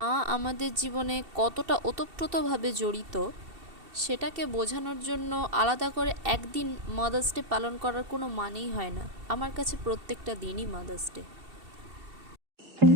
মা আমাদের জীবনে কতটা ওতপ্রোতভাবে জড়িত সেটাকে বোঝানোর জন্য আলাদা করে একদিন মাদার্স ডে পালন করার কোনো মানেই হয় না। আমার কাছে প্রত্যেকটা দিনই মাদার্স ডে।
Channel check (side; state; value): left; late; 2.7 ms